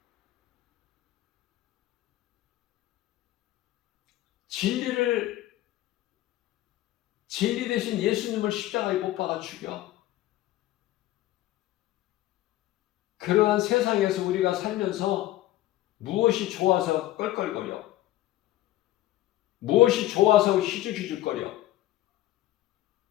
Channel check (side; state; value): right; quieter; 15.1 dB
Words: 진리 대신 예수님을 십자가에 못 박아 죽여. 그러한 세상에서 우리가 살면서 무엇이 좋아서 껄껄거려? 무엇이 좋아서 희죽희죽거려?